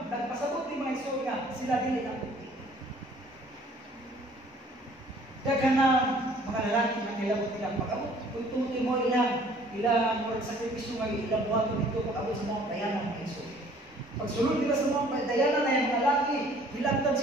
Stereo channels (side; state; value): both; normal; correlation 0.55